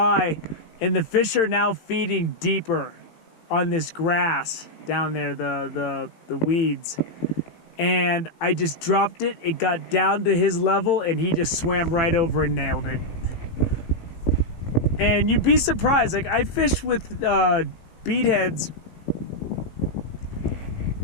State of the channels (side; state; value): right; late; 18 ms